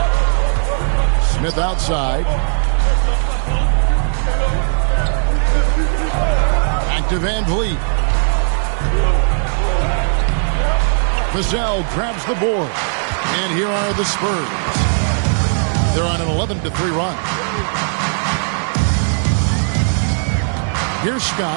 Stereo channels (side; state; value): left; silent; digital silence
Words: Smith outside. Back to Van Vliet. Vassell grabs the board. And here are the Spurs. They're on an 11-3 run. Here's